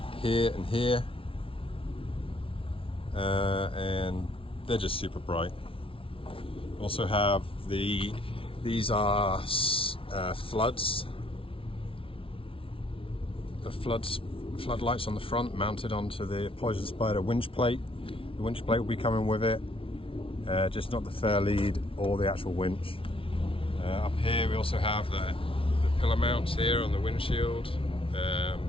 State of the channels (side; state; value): right; late; 0.26 ms